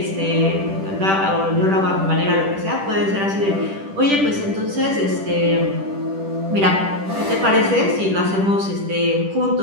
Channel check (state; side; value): late; left; 10 ms